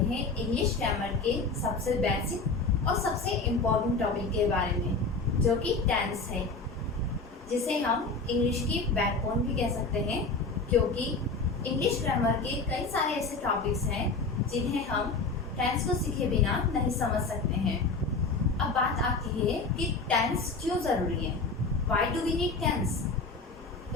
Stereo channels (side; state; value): right; quieter; 3.9 dB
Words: इंग्लिश ग्रामर के सबसे बेसिक और सबसे इम्पोर्टेंट टॉपिक के बारे में, जो कि टेंस है, जिसे हम इंग्लिश की बैकबोन भी कह सकते हैं, क्योंकि इंग्लिश ग्रामर के कई सारे ऐसे टॉपिक्स हैं जिन्हें हम टेंस को सीखे बिना नहीं समझ सकते हैं। अब बात आती है कि टेंस क्यों ज़रूरी है, why do we need tense.